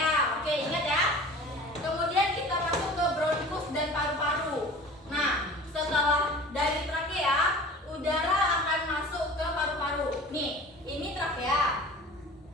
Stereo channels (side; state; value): both; normal; correlation 0.41